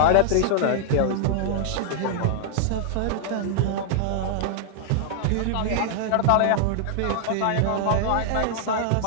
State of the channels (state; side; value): different; both; correlation -0.01